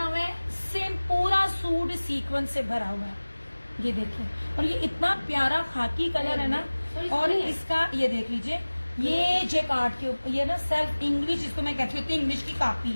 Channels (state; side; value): inverted; both; correlation -1.00